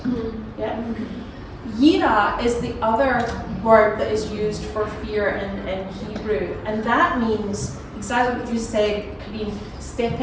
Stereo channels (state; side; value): identical; both; correlation 1.00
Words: Yeah. Yira is the other word that is used for fear in Hebrew, and that means exactly what you said, Karine,